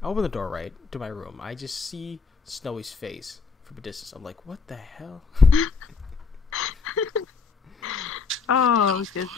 I open the door, right, to my room. I just see Snowy's face from a distance. I'm like, what the hell? Oh,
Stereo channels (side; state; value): right; quieter; 4.9 dB